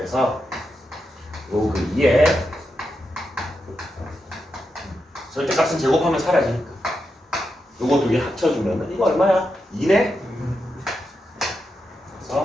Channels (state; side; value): normal; both; correlation 0.86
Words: 요 그 2에 절대값은 제곱하면 사라지니까 요거 두 개 합쳐주면은 이거 얼마야? 2네?